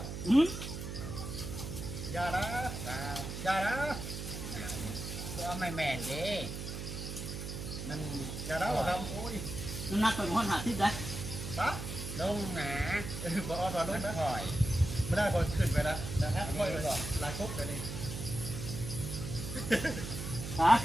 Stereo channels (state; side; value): noise; right; hum, 6 dB below the sound